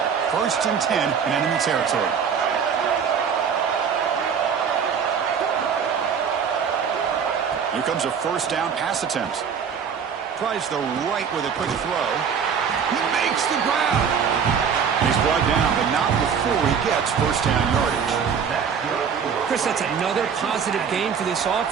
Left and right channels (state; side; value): quieter; left; 6.9 dB